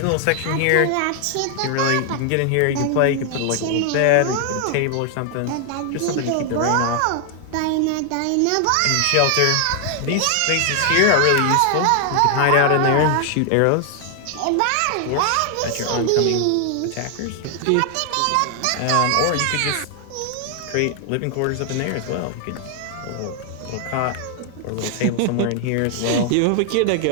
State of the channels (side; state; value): both; different; correlation 0.00